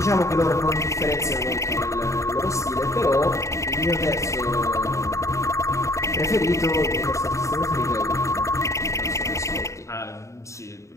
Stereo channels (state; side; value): late; right; 0.14 ms